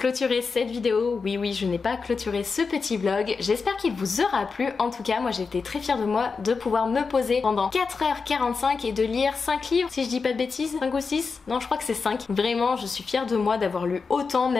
cette vidéo. Oui, je n'ai pas clôturé ce petit vlog. J'espère qu'il vous aura plu. En tout cas, moi j'ai été très fière de moi de pouvoir me poser pendant 4h45 et de lire 5 livres, si je dis pas de bêtises. 5 ou 6? Non, je crois que c'est 5. Vraiment, je suis fière de moi d'avoir lu autant,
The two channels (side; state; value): right; quieter; 4.8 dB